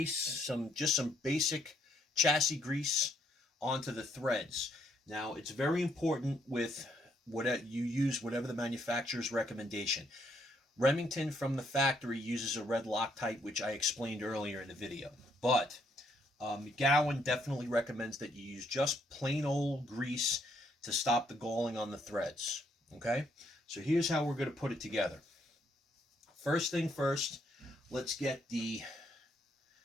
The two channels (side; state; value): both; normal; correlation 0.71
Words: just some basic chassis grease onto the threads. Now, it's very important with whatever you use, whatever the manufacturer's recommendation. Remington from the factory uses a red Loctite, which I explained earlier in the video. But McGowan definitely recommends that you use just plain old grease to stop the galling on the threads. Okay, so here's how we're going to put it together. First thing first, let's get the